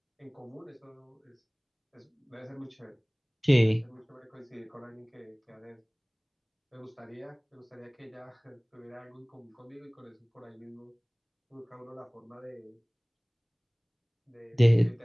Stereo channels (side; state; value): both; identical; correlation 1.00